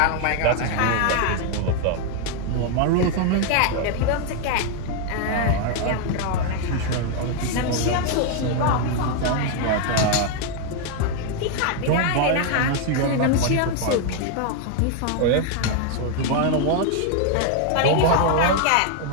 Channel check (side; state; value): both; different; correlation 0.01